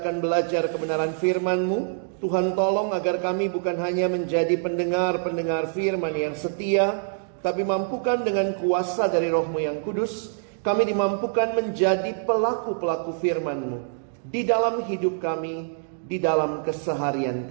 belajar kebenaran firman-Mu. Tuhan tolong agar kami bukan hanya menjadi pendengar-pendengar firman yang setia, tapi mampukan dengan kuasa dari Roh-Mu yang kudus, kami dimampukan menjadi pelaku-pelaku firman-Mu di dalam hidup kami, di dalam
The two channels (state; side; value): silent; left; digital silence